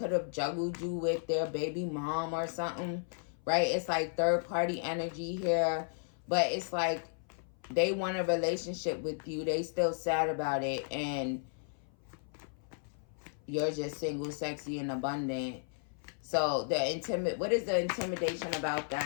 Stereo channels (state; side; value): silent; right; 55 dB below the other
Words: have juggled you with their baby mom or something. Right. It's like third party energy here. But it's like they want a relationship with you. They still sad about it. And you're just single, sexy, and abundant. So what is the intimidation about